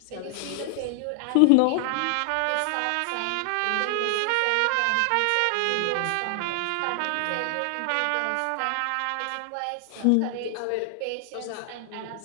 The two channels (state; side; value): different; both; correlation 0.00